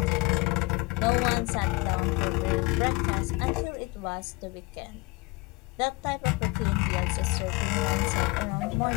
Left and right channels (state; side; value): quieter; right; 23.0 dB